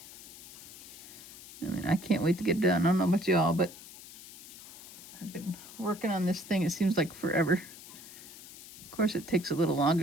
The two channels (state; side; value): noise; left; hiss, 16 dB below the sound